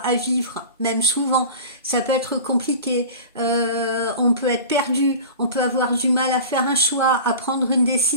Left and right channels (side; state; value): both; inverted; correlation -0.35